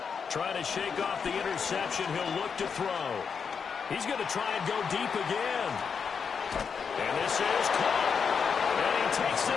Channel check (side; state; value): right; quieter; 6.2 dB